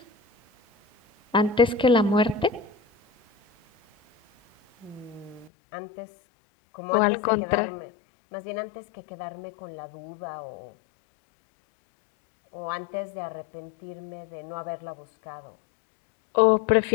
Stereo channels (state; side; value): drops out; right; at 5.5 s